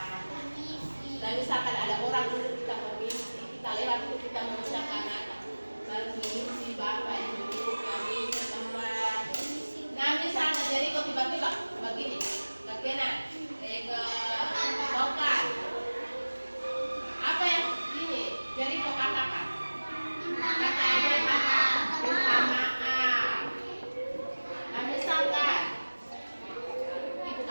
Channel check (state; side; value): inverted; both; correlation -1.00